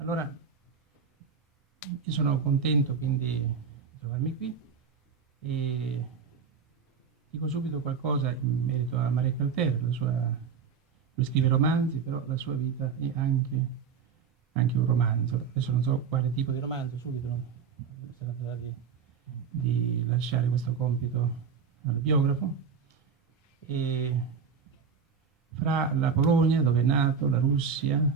io sono contento quindi di trovarmi qui e dico subito qualcosa in merito a Marek Alter. Lui scrive romanzi, però la sua vita è anche un romanzo. Adesso non so quale tipo di romanzo, subito si tratterà di lasciare questo compito al biografo. E fra la Polonia, dove è nato, la Russia,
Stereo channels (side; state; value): left; quieter; 6.3 dB